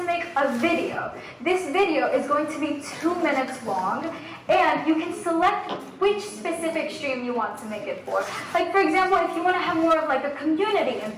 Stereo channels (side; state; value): both; identical; correlation 1.00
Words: make a video. This video is going to be 2 minutes long, and you can select which specific stream you want to make it for. Like for example, if you want to have more of like a community